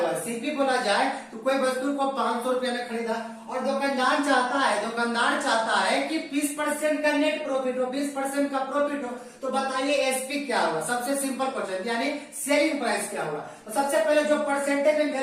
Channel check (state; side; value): identical; both; correlation 1.00